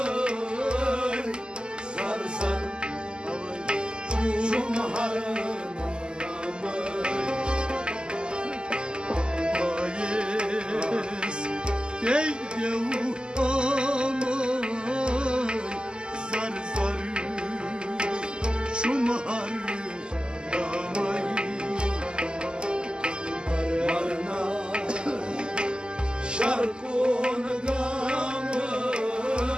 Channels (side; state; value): left; late; 0.048 ms